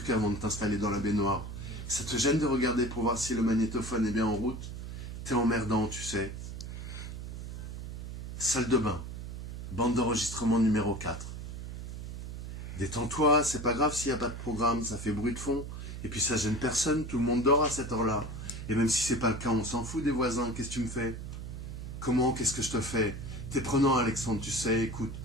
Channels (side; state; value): right; noise; hum, 8 dB below the sound